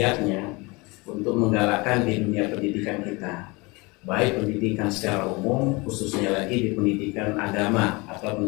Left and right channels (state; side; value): quieter; right; 25.7 dB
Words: untuk menggalakkan di dunia pendidikan kita, baik pendidikan secara umum, khususnya lagi di pendidikan agama atau